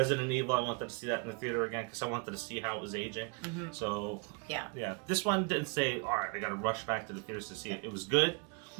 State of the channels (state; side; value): quieter; left; 33.5 dB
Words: Evil, I wanted to see that in the theater again because I wanted to see how it was aging. So, this one didn't say, all right, I got to rush back to the theaters to see it. It was good.